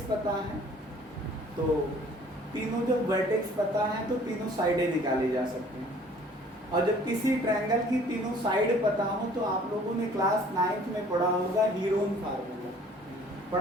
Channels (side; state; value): both; normal; correlation 0.54